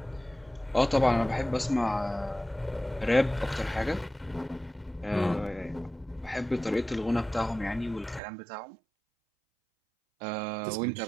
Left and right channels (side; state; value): left; drops out; at 8.2 s